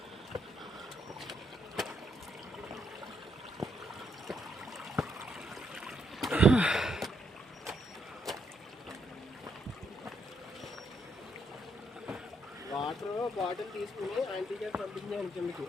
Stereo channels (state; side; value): normal; both; correlation 0.76